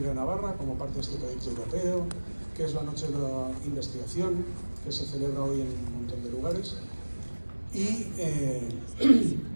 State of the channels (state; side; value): inverted; both; correlation -1.00